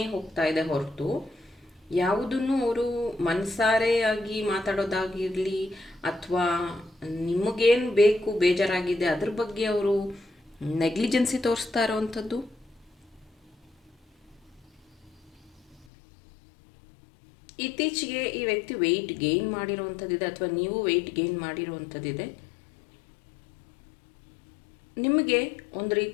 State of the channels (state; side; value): drops out; right; at 15.9 s